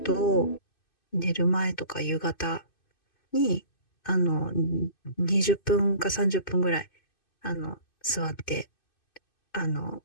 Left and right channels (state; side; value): late; right; 2.6 ms